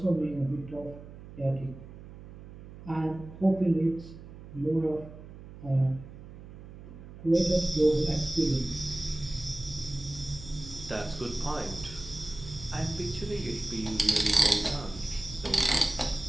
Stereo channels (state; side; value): noise; right; hum, 15 dB below the sound